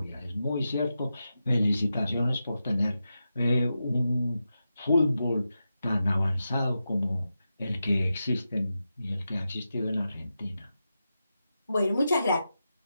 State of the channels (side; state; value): both; inverted; correlation -0.90